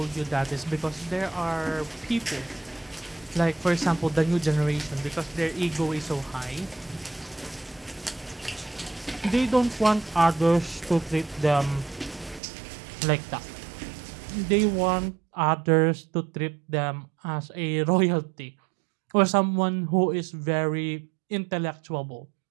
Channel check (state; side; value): drops out; left; at 12.4 s